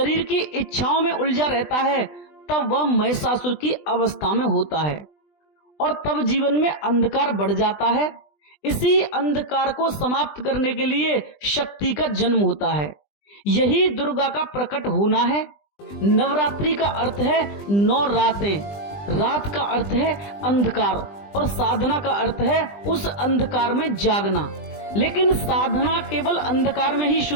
की इच्छाओं में उलझा रहता है, तब वह महिषासुर की अवस्था में होता है और तब जीवन में अंधकार बढ़ जाता है। इसी अंधकार को समाप्त करने के लिए शक्ति का जन्म होता है, यही दुर्गा का प्रकट होना है। नवरात्रि का अर्थ है 9 रातें, रात का अर्थ है अंधकार और साधना का अर्थ है उस अंधकार में जागना। लेकिन साधना केवल अंधकार में ही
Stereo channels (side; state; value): right; late; 20 ms